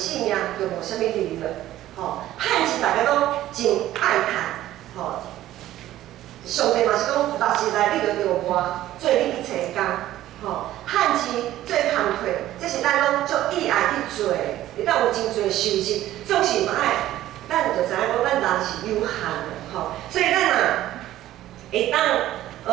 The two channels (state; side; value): quieter; left; 14.0 dB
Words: 命，就无啥物利润。吼，趁钱大家拢真爱趁，吼。上帝嘛是讲，六时内你着活，做你一切工，吼，趁钱做工课，这是咱拢足意爱去做的，会当有真侪收入，总是嘛爱。咱就知影讲，咱人是有限的，吼，所以咱会